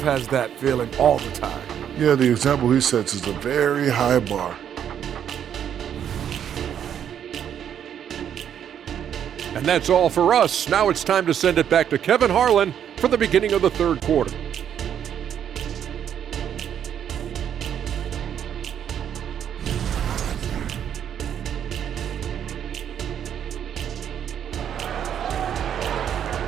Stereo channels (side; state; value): left; quieter; 9.2 dB